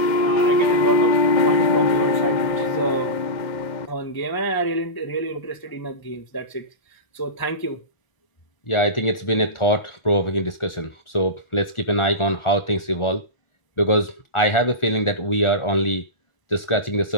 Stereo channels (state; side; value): late; right; 1.4 ms